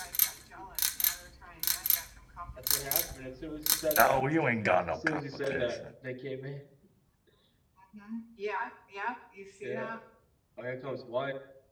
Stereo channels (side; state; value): both; identical; correlation 1.00